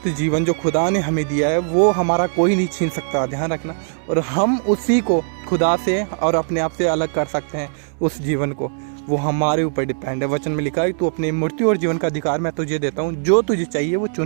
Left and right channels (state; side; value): silent; left; digital silence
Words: जीवन जो खुदा ने हमें दिया है वो हमारा कोई नहीं छीन सकता, ध्यान रखना। और हम उसी को खुदा से और अपने आप से अलग कर सकते हैं। उस जीवन को, वो हमारे ऊपर डिपेंड है। वचन में लिखा है, तू अपनी मृत्यु और जीवन का अधिकार मैं तुझे देता हूँ, जो तुझे चाहिए वो